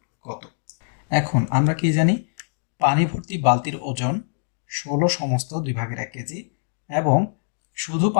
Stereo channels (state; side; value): silent; right; digital silence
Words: কত। এখন আমরা কি জানি, পানি ভর্তি বালতির ওজন 16 সমস্ত 2/1 কেজি, এবং শুধু